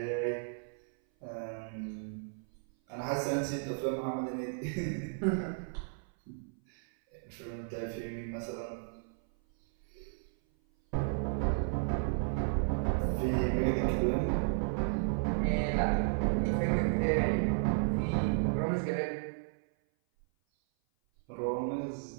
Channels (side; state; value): left; silent; 55 dB below the other